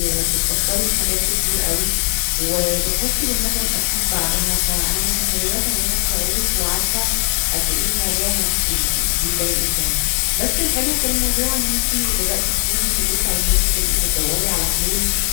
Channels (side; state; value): right; silent; digital silence